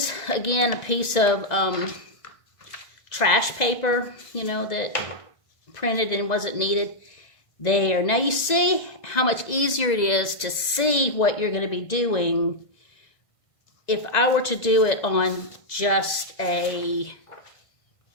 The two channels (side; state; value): right; late; 2.0 ms